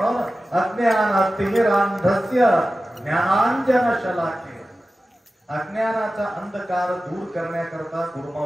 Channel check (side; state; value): both; normal; correlation 0.95